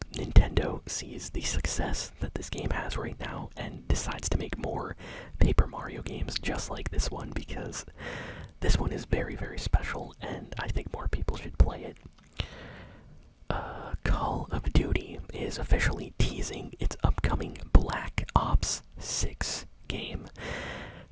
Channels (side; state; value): both; identical; correlation 1.00